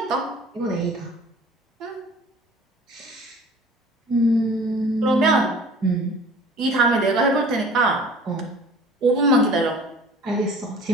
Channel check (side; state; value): both; normal; correlation 0.46